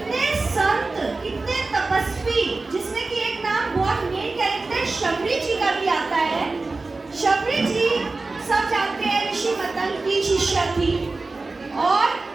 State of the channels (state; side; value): quieter; left; 3.5 dB